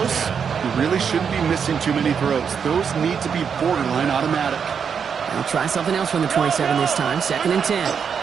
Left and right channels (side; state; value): left; quieter; 6.8 dB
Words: you really shouldn't be missing too many throws. Those need to be borderline automatic. They'll try something else from the 27 this time. 2nd and 10.